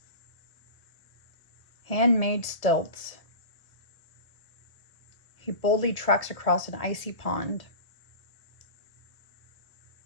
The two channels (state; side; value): late; right; 1.8 ms